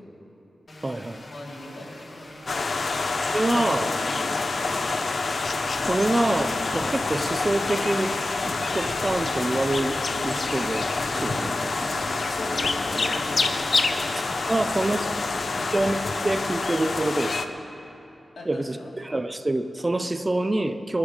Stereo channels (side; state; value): both; normal; correlation 0.93